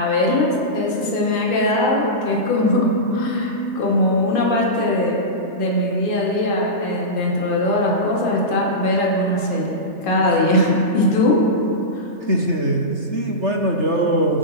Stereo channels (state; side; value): late; left; 3.3 ms